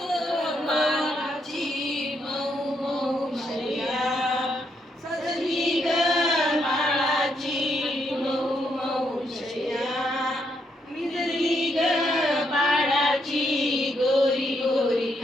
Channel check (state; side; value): normal; both; correlation 0.77